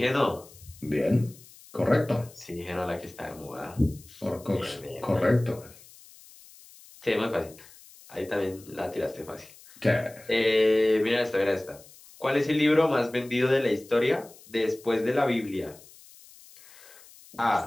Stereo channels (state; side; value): noise; left; hiss, 22 dB below the sound